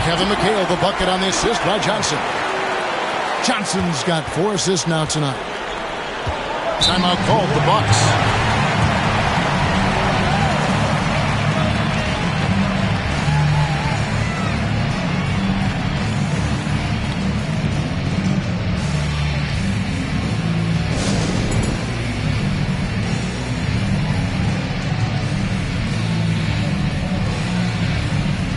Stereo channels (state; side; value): identical; both; correlation 1.00